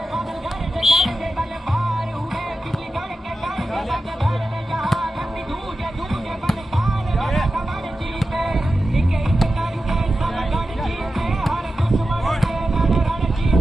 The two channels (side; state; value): both; normal; correlation 0.92